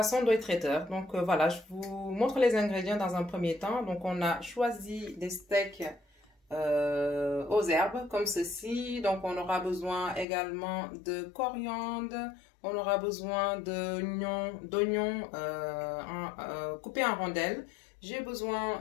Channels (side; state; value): right; drops out; at 10.2 s